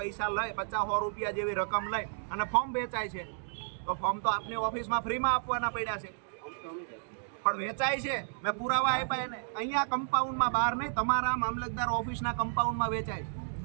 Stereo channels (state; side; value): silent; left; digital silence